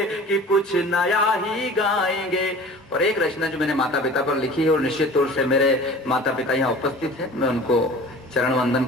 कि कुछ नया ही गाएंगे। और एक रचना जो मैंने माता पिता पर लिखी है, और निश्चित तौर से मेरे माता पिता यहाँ उपस्थित हैं, मैं उनको चरण वंदन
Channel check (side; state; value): both; normal; correlation 0.42